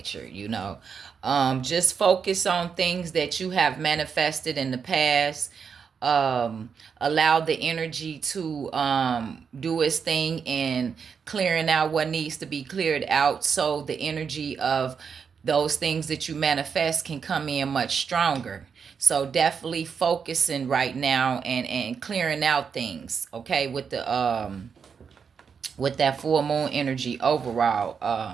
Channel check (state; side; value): quieter; left; 6.4 dB